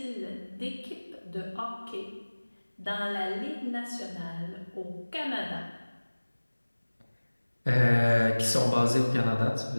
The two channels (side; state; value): both; inverted; correlation -1.00